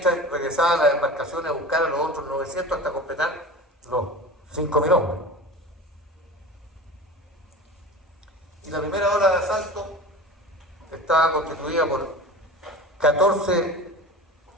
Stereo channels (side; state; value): both; normal; correlation 0.34